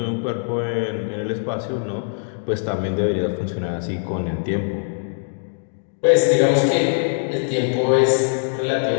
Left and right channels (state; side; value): silent; right; digital silence